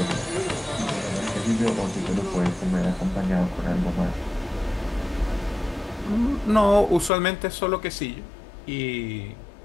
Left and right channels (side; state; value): right; drops out; at 7.1 s